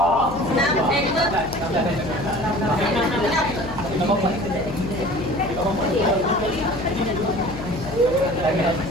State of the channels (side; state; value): left; noise; hum, 11 dB below the sound